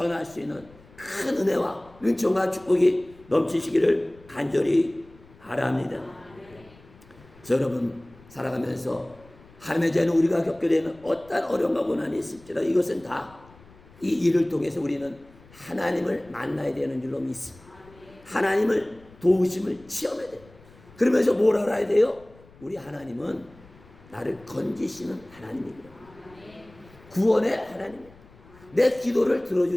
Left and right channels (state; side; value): noise; left; rumble, 25 dB below the sound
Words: 수 있는 큰 은혜와 은총과 축복이 넘치시기를 간절히 바랍니다. 그래서 여러분 살아가면서 하나님의 자녀 우리가 겪게 되는 어떤 어려움과 고난이 있을지라도 이것은 다 이 일을 통해서 우리는 하나님을 만나야 되는 줄로 믿습니다. 하나님을 도우심을 체험해야 돼요. 그러면서 뭘 알아야 돼요? 우리 하나님은 나를 건지시는 하나님이구나. 구원의 하나님이야. 내 기도를